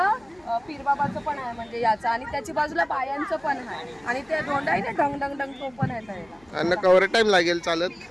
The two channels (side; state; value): left; noise; hum, 29 dB below the sound